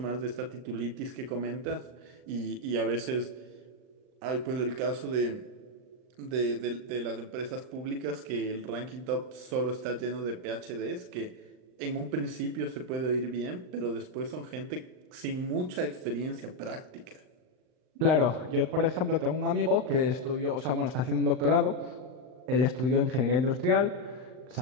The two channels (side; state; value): left; late; 39 ms